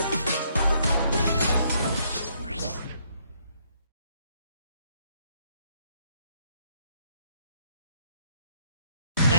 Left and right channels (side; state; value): both; inverted; correlation -0.69